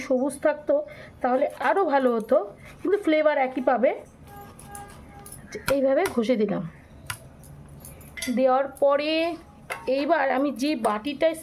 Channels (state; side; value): identical; both; correlation 1.00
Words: সবুজ থাকতো তাহলে আরও ভালো হতো, কিন্তু ফ্লেভার একই পাবে। এইভাবে ঘষে দিলাম। দেওয়ার পরে এইবার আমি যে বাটিটায়